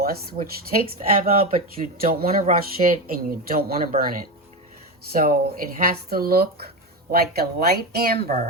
which takes forever, but you don't want to rush it and you don't want to burn it. So it has to look like a light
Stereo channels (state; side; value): normal; both; correlation 0.17